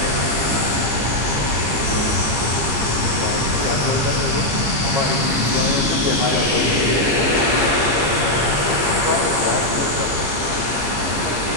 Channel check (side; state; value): left; late; 15 ms